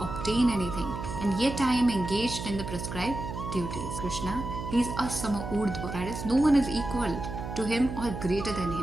anything, and yet I am engaged in the prescribed duties. Krishna, he is asama urdhva, that is, no one is equal to him or greater than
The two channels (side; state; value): right; noise; hum, 7 dB below the sound